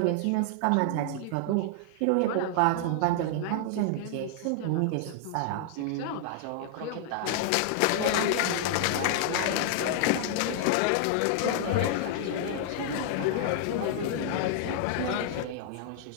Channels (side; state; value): both; different; correlation -0.01